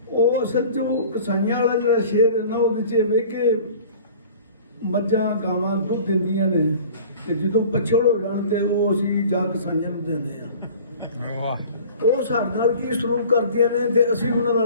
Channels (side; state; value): both; inverted; correlation -0.45